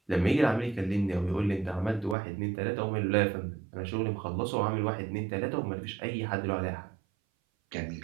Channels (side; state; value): left; drops out; at 2.1 s